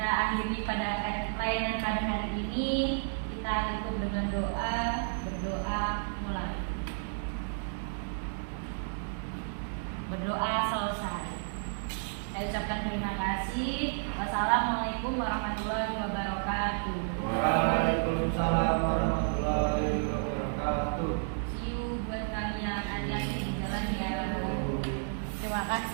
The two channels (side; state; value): left; silent; digital silence